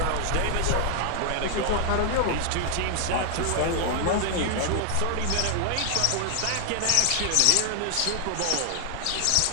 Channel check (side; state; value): both; different; correlation 0.00